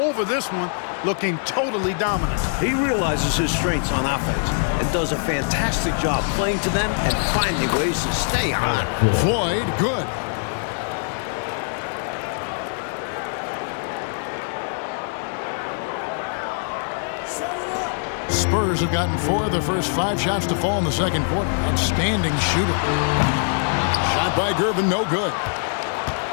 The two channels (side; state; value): right; silent; digital silence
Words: this one, looking totally dominant. He realizes his strengths on offense and does a fantastic job playing to them and finding ways to stay hot. Floyd, good. Spurs have gotten 4 of their first 5 shots to fall in the second quarter. Outstanding shooter. Shot by Gervin, no good.